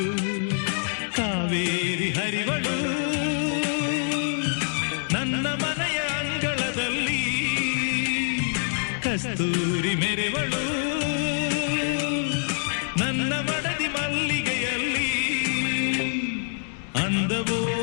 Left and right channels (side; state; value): right; silent; digital silence